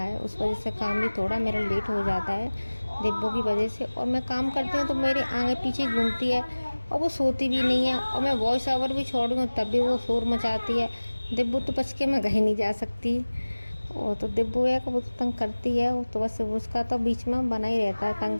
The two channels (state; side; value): inverted; both; correlation -1.00